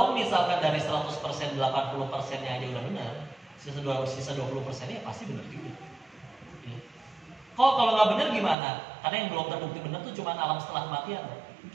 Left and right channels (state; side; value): drops out; left; at 8.6 s